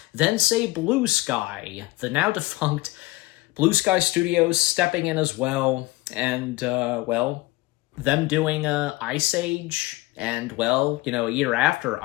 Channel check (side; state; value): right; quieter; 20.6 dB